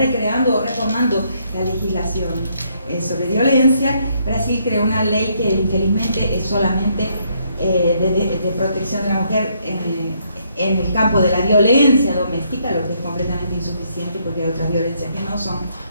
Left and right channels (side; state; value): both; inverted; correlation -0.72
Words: o reformando la legislación sobre violencia. Brasil creó una ley que infelizmente es solamente de protección de la mujer en el campo de la violencia doméstica, lo que es completamente insuficiente porque hay otras violencias que no son